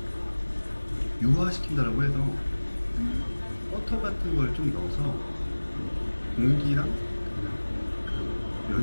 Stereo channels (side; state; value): both; inverted; correlation -1.00